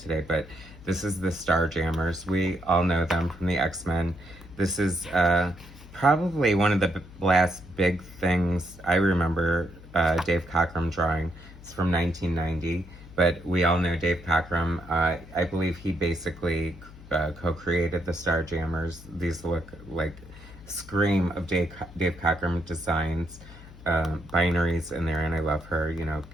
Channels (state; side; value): noise; left; hum, 18 dB below the sound